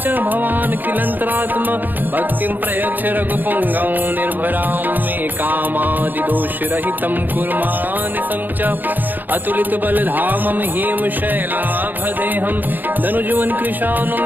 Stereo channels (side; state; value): left; late; 0.087 ms